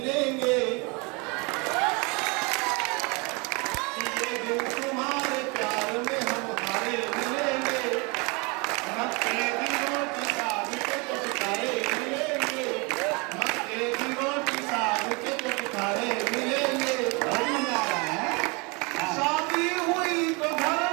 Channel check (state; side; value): quieter; left; 29.5 dB